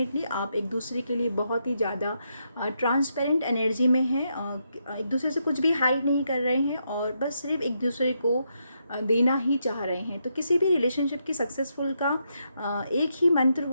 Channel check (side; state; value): both; inverted; correlation -0.80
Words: आप एक दूसरे के लिए बहुत ही ज़्यादा ट्रांसपेरेंट एनर्जी में हैं। एक दूसरे से कुछ भी हाइड नहीं कर रहे हैं और बस सिर्फ एक दूसरे को देना ही चाह रहे हैं। तो किसी भी रिलेशनशिप की सक्सेसफुल का एक ही मंत्र